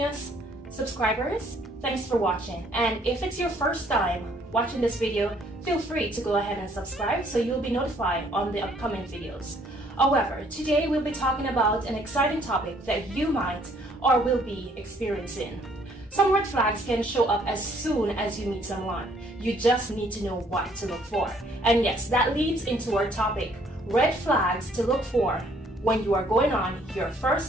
subscribers. Thanks for watching. And if it's your first time watching this video, feel free to go ahead and subscribe so you'll be notified on the upcoming videos. However, today we'll be talking about an exciting topic that you might or will be experiencing. Some red flags can show up as soon as you meet someone. You just need to know what to look for. And yes, that leads into our topic, red flags to look for when you are going on your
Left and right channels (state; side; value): normal; both; correlation 0.63